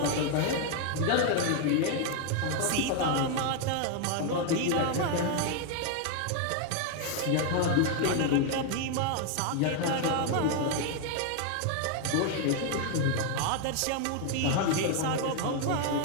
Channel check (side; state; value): both; different; correlation 0.01